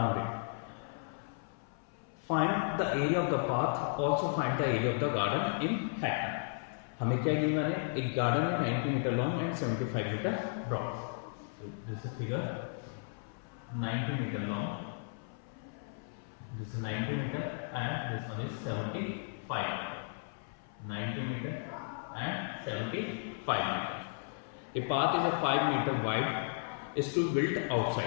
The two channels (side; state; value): right; silent; 55 dB below the other